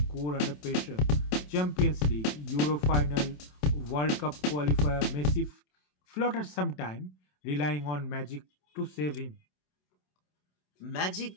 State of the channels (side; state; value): right; late; 27 ms